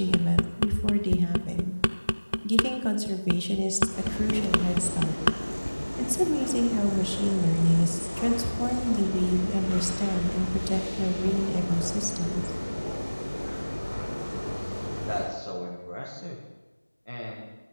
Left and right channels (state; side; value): inverted; both; correlation -1.00